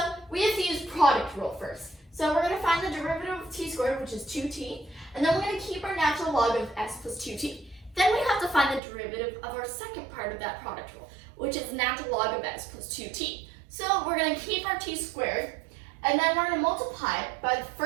we have to use product rule first. So we're going to find the derivative of t squared, which is 2t, and then we're going to keep our natural log of s plus 2t. Then we have to find the derivative of our second part of that product rule, which is natural log of s plus 2t. So we're going to keep our t squared, and then we're going to multiply by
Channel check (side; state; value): left; drops out; at 8.8 s